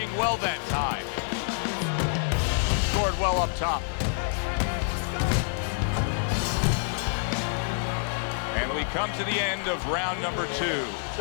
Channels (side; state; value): right; silent; 58 dB below the other